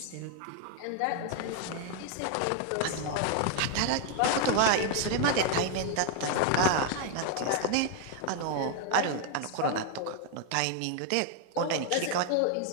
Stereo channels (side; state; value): both; different; correlation 0.00